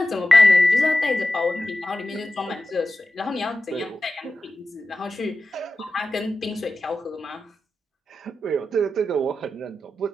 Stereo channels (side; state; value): both; normal; correlation 0.93